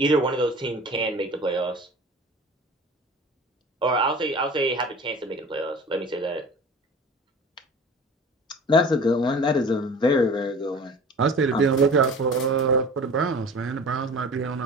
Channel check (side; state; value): both; normal; correlation 0.41